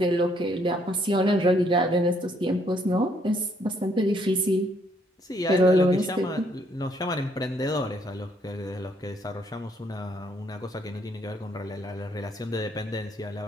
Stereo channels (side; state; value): both; normal; correlation 0.69